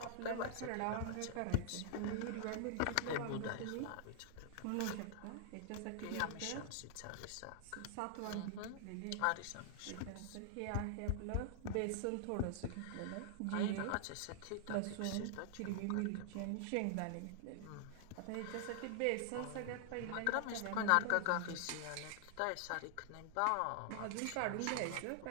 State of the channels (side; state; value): both; different; correlation -0.01